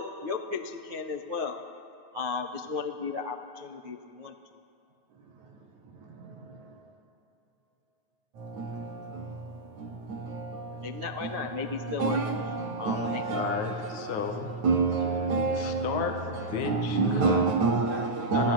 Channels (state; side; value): late; left; 9.3 ms